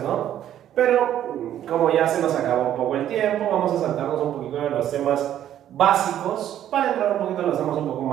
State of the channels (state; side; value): quieter; left; 11.2 dB